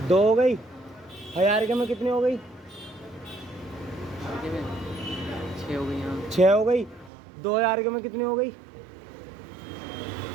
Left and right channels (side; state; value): left; drops out; at 7.1 s